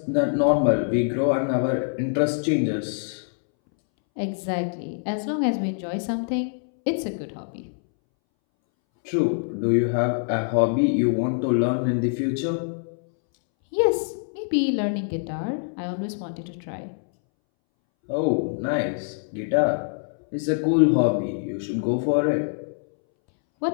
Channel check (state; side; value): silent; right; 62 dB below the other